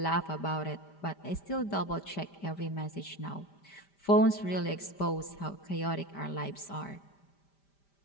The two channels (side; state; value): right; late; 5.1 ms